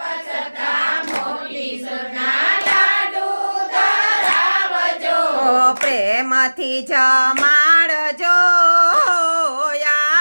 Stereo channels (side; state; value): both; inverted; correlation -1.00